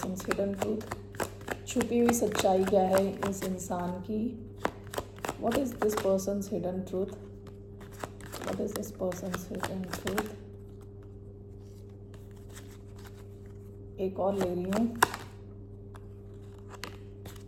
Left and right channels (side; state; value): both; identical; correlation 1.00